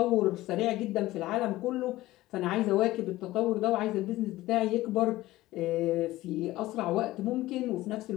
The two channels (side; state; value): right; quieter; 17.1 dB